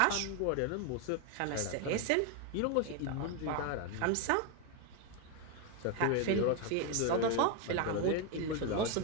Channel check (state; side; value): different; both; correlation 0.01